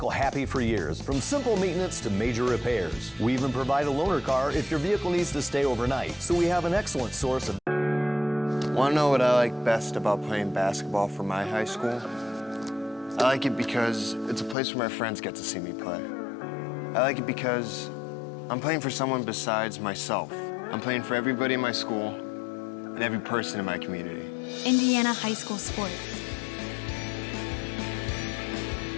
happy for years, from simple maintenance to major repairs. We even provide a loaner car if your vehicle needs to stay overnight, so we have an excellent source of... Want to know what I like best about playing basketball for my high school? I like it because it's a place where my friends get to see me play. I like it because I'm playing for someone besides myself. I'm playing for everybody in my school and every person in my community. Indiana high school sports.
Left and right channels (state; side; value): drops out; right; at 14.6 s